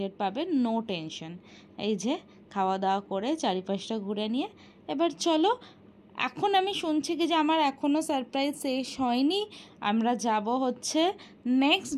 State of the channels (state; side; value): identical; both; correlation 1.00